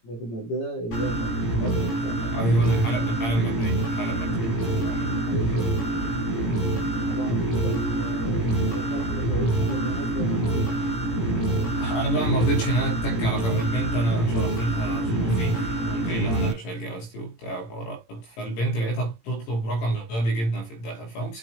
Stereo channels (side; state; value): right; late; 18 ms